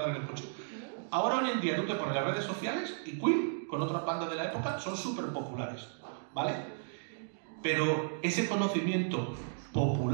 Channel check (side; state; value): left; silent; digital silence